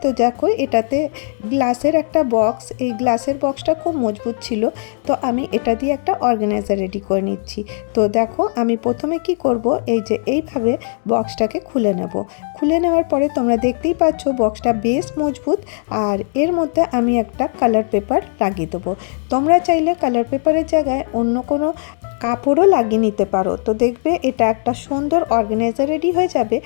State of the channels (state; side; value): silent; right; digital silence